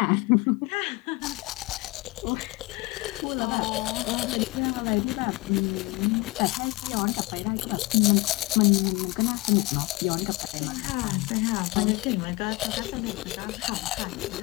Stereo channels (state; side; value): quieter; right; 22.4 dB